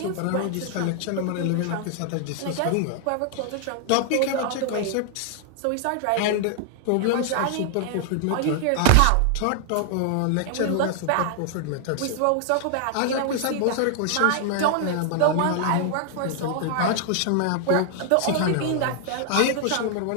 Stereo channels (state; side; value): different; both; correlation 0.00